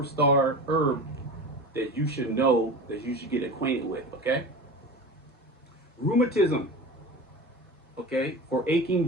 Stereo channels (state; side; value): normal; both; correlation 0.31